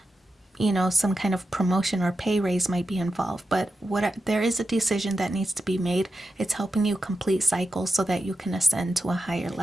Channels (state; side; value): normal; both; correlation 0.89